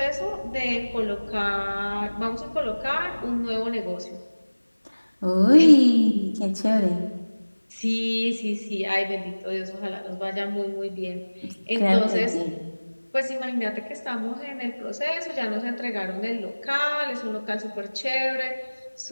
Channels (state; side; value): inverted; both; correlation -1.00